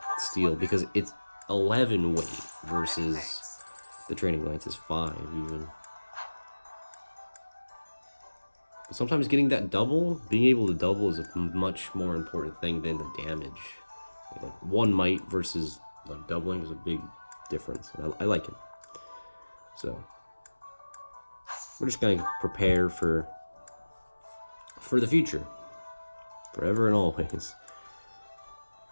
steel because it's 11 weight versus the training lance is 5 even. But sometimes getting that double, being able to double is a much more important thing than the damage. Like one might versus like doubling is a big difference. And I like it. So we're just gonna prepare for the future, forever and always.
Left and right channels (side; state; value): both; inverted; correlation -1.00